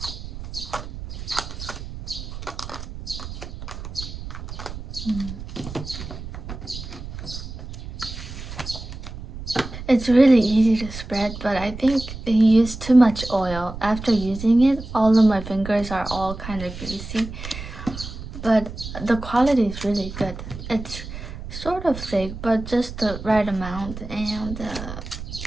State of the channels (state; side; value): noise; right; rumble, 10 dB below the sound